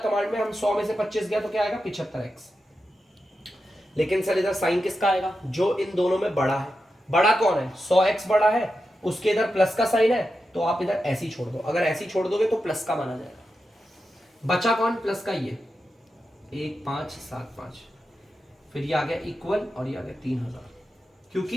कमांड में हम 100 में से 25 गया तो क्या आएगा 75x। लेकिन सर इधर साइन किसका आएगा, जो इन दोनों में बड़ा है। बड़ा कौन है, 100x बड़ा है, उसके इधर प्लस का साइन है, तो आप इधर ऐसी छोड़ दो। अगर ऐसी छोड़ दोगे तो प्लस का माना जाएगा। बचा कौन, प्लस का, ये 1 5 7 5, फिर ये आ गया इक्वल और ये आ गया 3000। क्योंकि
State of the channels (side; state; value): both; normal; correlation 0.89